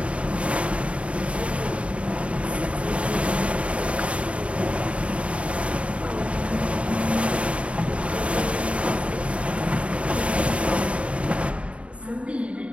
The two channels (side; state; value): left; late; 0.062 ms